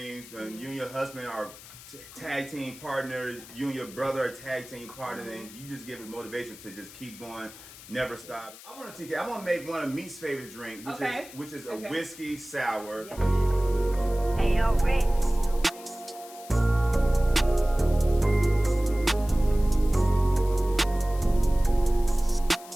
You and your husband are tag team partners. You and your brother are tag team partners, and you just give us motivation to just keep going. Never stop. I want to make one of Meat's favorite drink, which is a whiskey sour. Yes. Ayo, Rick.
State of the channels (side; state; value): left; noise; hiss, 18 dB below the sound